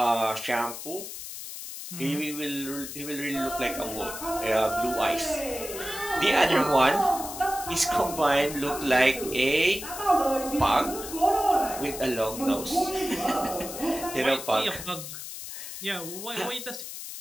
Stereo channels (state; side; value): noise; left; hiss, 9 dB below the sound